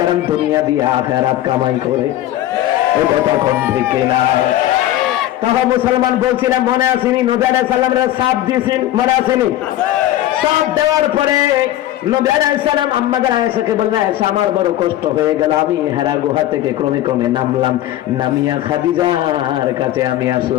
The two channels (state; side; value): quieter; right; 13.8 dB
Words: দুনিয়া দিয়ে আখিরাত কামাই করে। এই কথা কোন ঠিক না? তখন মুসলমান বলছিলাম, মনে আসেনি নবী আলাইহিস সালামের সাপ দিয়েছেন, মনে আসেনি? সাপ দেওয়ার পরে নবী আলাইহিস সালাম আম্মাদের আয়েশাকে বললেন, আয়েশা আমার বড় কষ্ট হয়ে গেল, আমি হেরা গুহা থেকে ক্রমে ক্রমে নামলাম, নামিয়া খাদিজার কাছে আমি